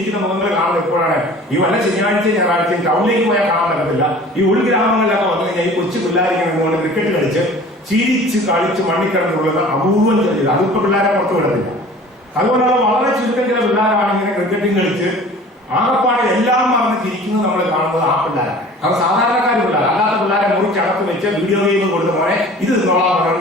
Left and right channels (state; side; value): normal; both; correlation 0.45